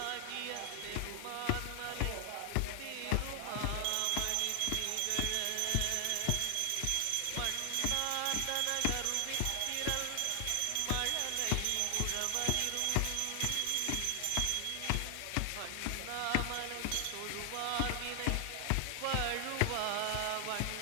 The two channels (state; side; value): different; both; correlation 0.00